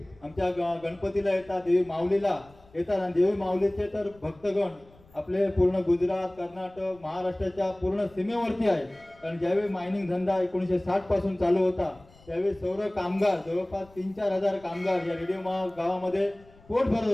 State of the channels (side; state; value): left; noise; rumble, 27 dB below the sound